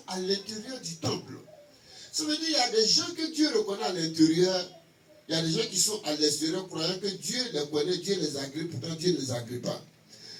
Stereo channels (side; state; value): both; identical; correlation 1.00